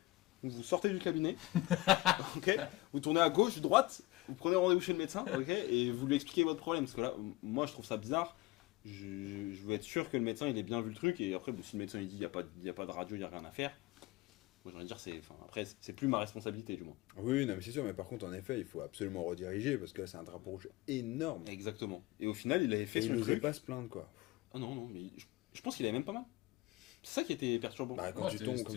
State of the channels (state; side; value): quieter; right; 19.7 dB